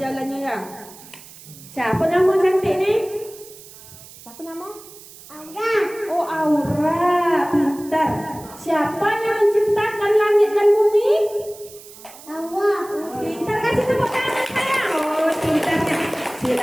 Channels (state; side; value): noise; right; hiss, 19 dB below the sound